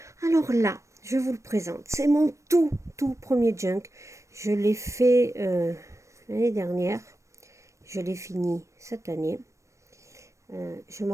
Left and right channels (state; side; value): late; left; 0.15 ms